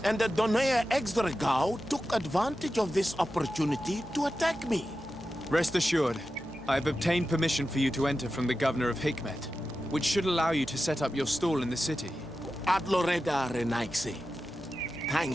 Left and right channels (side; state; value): both; normal; correlation 0.92